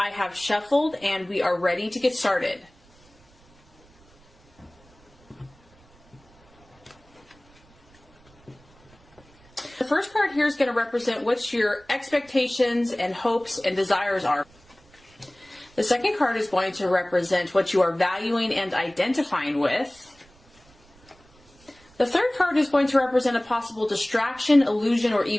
have shuffled and we are ready to get started. The first card here is going to represent what your expectations and hopes and desires are. The second card is going to represent what you are valuing and identifying with. The third card is going to represent a possible distraction, illusion, or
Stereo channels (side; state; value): right; noise; rumble, 29 dB below the sound